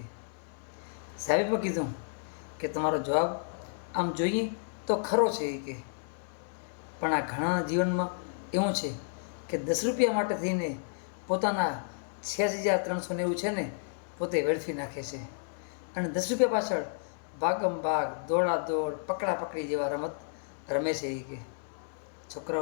સાહેબે પણ કીધું કે તમારો જવાબ આમ જોઈએ તો ખરો છે કે, પણ આ ઘણા જીવનમાં એવું છે કે 10 રૂપિયા માટે થઈને પોતાના 86,390 છે ને પોતે વેડફી નાખે છે અને 10 રૂપિયા પાછળ ભાગમ ભાગ, દોડા દોડ, પકડા પકડી જેવા રમત રમે છે કે.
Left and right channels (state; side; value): silent; right; 57 dB below the other